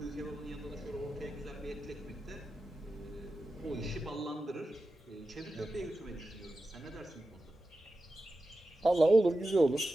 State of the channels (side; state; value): both; normal; correlation 0.92